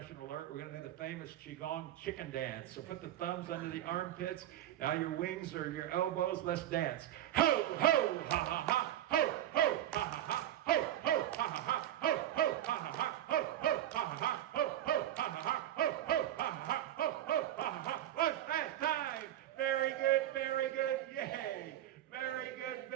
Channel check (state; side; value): quieter; left; 12.3 dB